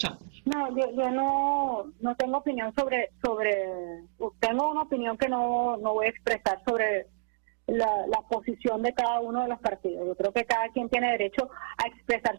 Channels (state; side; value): silent; left; digital silence